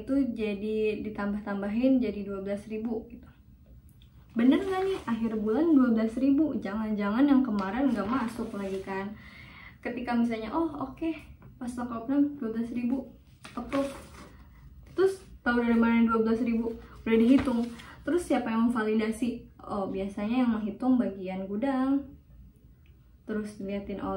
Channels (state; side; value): identical; both; correlation 1.00